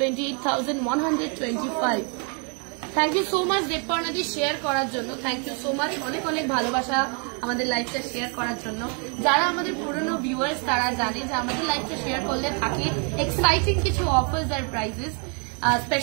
থ্যাংক ইউ সো মাচ দেবপর্ণাদি শেয়ার করার জন্য। থ্যাংক ইউ সো মাচ, অনেক অনেক ভালোবাসা আমাদের লাইভটা শেয়ার করার জন্য। যারা আমাদের পুরনো ভিউয়ার্স তারা জানে যে আমাদের লাইভটা শেয়ার করলে থাকে এক্সাইটিং কিছু অফার্স আর প্রাইজেস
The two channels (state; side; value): quieter; left; 37.4 dB